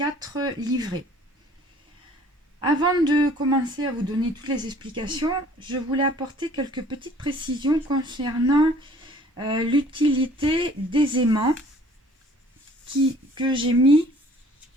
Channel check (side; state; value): both; normal; correlation 0.54